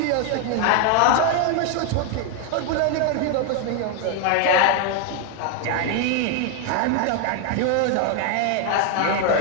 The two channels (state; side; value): different; both; correlation 0.00